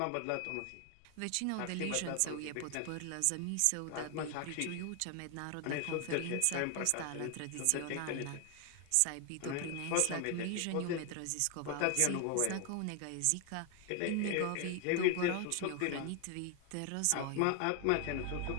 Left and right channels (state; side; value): different; both; correlation 0.01